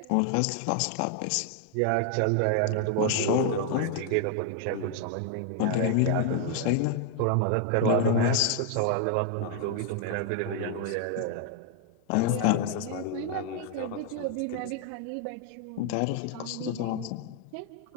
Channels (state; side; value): different; both; correlation 0.00